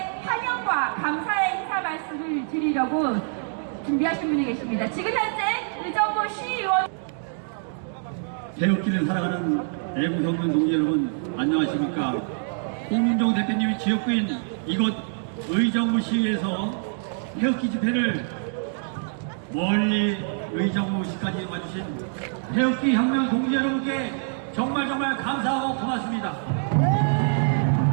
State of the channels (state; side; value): silent; left; digital silence